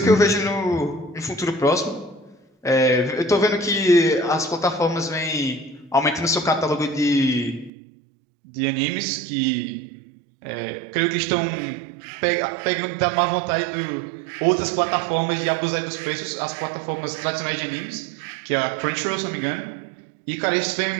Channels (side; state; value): left; drops out; at 7.7 s